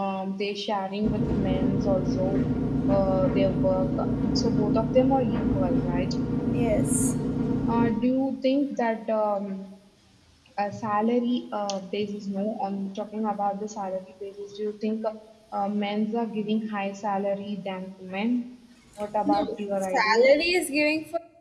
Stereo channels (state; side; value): identical; both; correlation 1.00